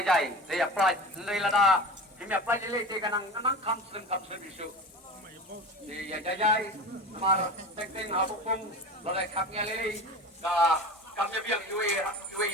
dia apply nri lada kimi apply ile te kanang namang kamsen isu dia jai mar teng habukung lalai kapnya lele ka kamnya biang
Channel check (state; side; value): normal; both; correlation 0.31